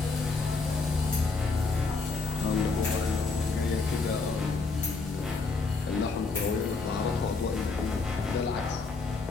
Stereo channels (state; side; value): quieter; right; 4.1 dB